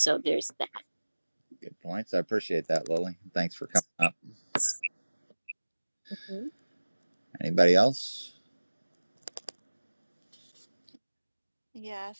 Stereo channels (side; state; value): both; inverted; correlation -1.00